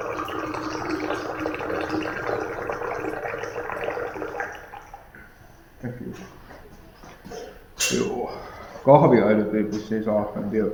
Joo. Kahvia ei nyt vissiin saa, en tiedä.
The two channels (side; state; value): both; identical; correlation 1.00